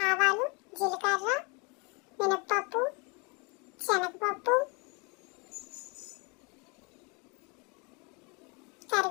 జీలకర్ర, మినప్పప్పు, శనగపప్పు,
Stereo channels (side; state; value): right; quieter; 31.2 dB